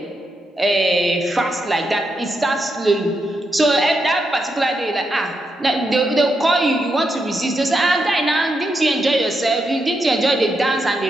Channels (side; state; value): both; normal; correlation 0.83